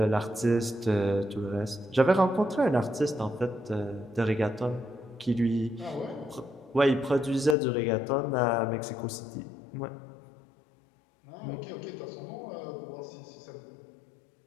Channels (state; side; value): drops out; right; at 7.6 s